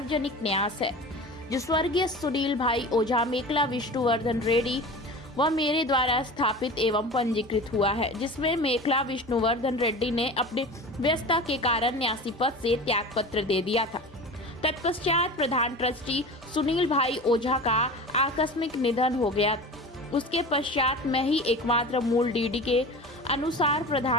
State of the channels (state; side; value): normal; both; correlation 0.34